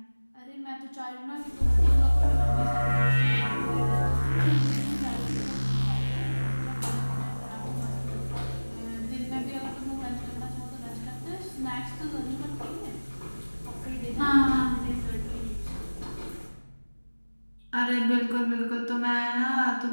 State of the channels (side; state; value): both; inverted; correlation -1.00